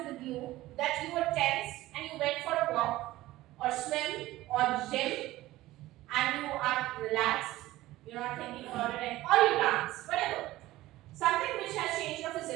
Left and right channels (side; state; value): left; quieter; 16.8 dB